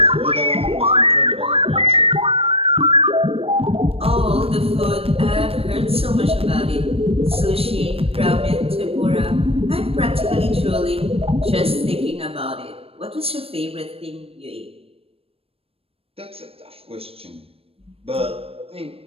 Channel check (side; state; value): left; late; 0.28 ms